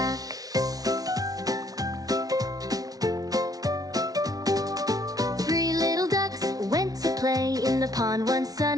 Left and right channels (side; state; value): left; late; 0.18 ms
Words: Three little ducks went to play in the pond one